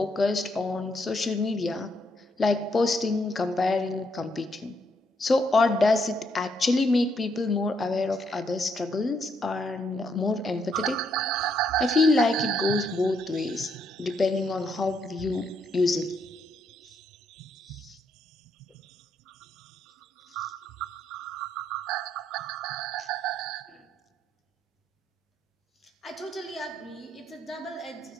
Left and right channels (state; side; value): normal; both; correlation 0.75